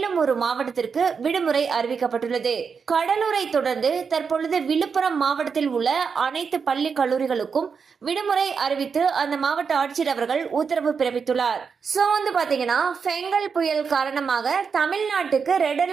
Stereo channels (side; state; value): left; quieter; 5.9 dB